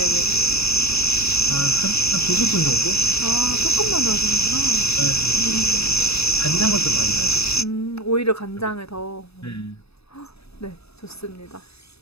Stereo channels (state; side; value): late; right; 0.79 ms